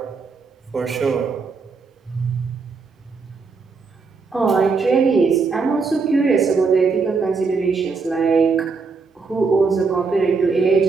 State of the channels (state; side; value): quieter; left; 4.7 dB